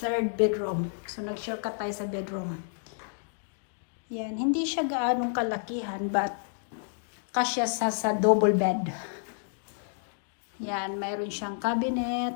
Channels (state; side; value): silent; right; digital silence